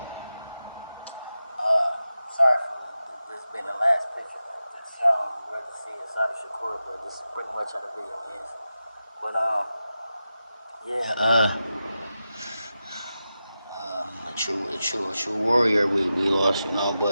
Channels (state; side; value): inverted; both; correlation -0.92